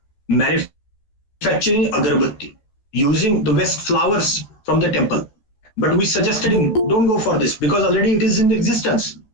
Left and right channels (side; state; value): right; late; 14 ms